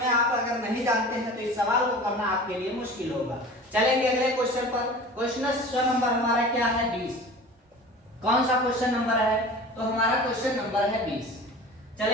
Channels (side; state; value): both; normal; correlation 0.38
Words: आप अगर नहीं जानते हैं तो इस सवाल को करना आपके लिए मुश्किल होगा। चलेंगे अगले क्वेश्चन पर। क्वेश्चन नंबर हमारा क्या है? 20। कौन सा क्वेश्चन नंबर है? तो हमारा क्वेश्चन नंबर है 20।